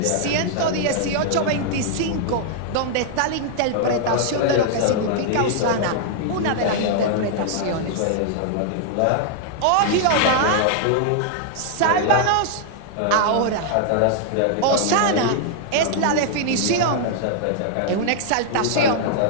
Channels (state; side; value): different; both; correlation -0.01